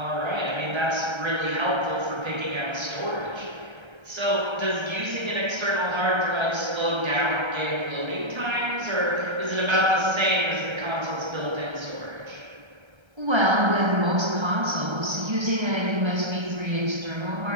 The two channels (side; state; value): left; late; 1.3 ms